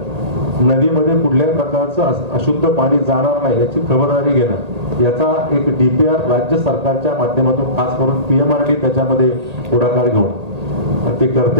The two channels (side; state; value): left; late; 1.8 ms